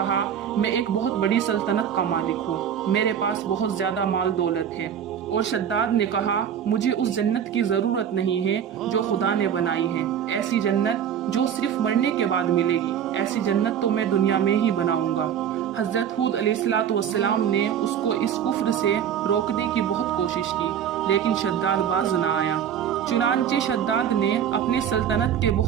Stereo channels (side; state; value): left; quieter; 8.9 dB